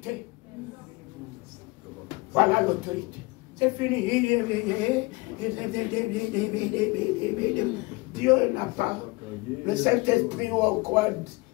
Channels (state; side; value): quieter; right; 24.5 dB